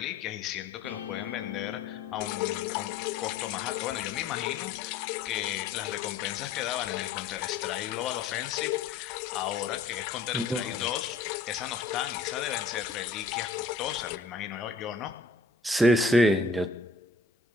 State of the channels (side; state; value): right; quieter; 4.2 dB